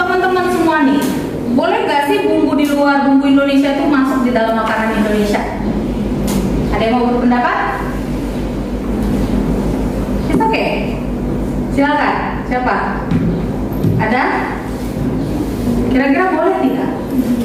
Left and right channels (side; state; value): both; identical; correlation 1.00